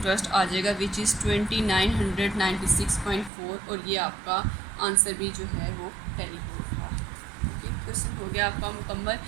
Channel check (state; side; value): drops out; left; at 3.3 s